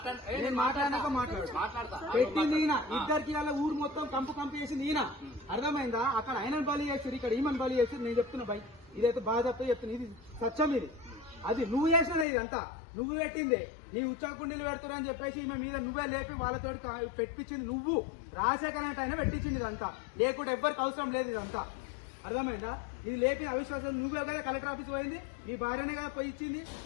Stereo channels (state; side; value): drops out; right; at 12.2 s